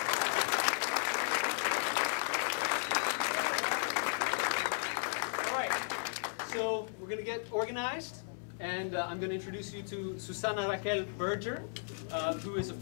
All right. So we're going to get organized, and I'm going to introduce you to Susana Raquel Berger, who is a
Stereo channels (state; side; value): silent; right; 54 dB below the other